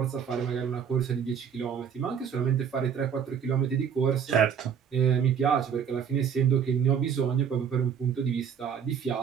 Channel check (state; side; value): quieter; left; 7.6 dB